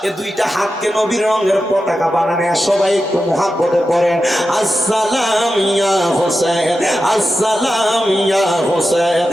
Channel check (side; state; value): both; normal; correlation 0.91